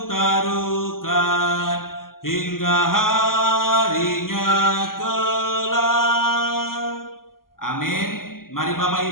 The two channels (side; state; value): right; late; 0.91 ms